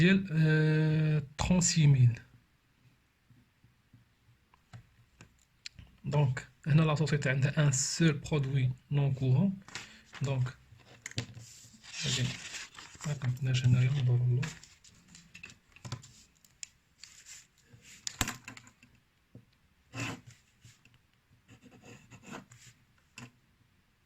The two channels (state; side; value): identical; both; correlation 1.00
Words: 36000. دونك هنا لا سوسيتي عندها ان سول برودوي نون كورون. دونك غادي ما كنتناش هنايا ندور له